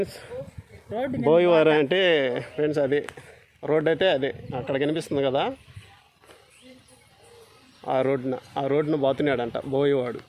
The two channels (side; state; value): both; identical; correlation 1.00